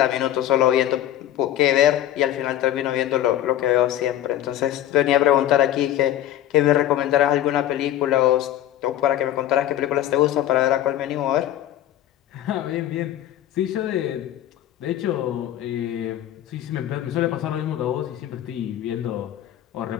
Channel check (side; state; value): right; quieter; 12.2 dB